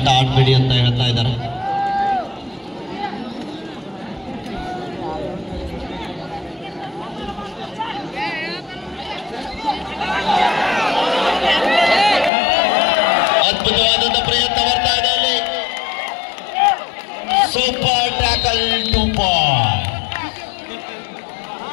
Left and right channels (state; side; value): drops out; right; at 12.3 s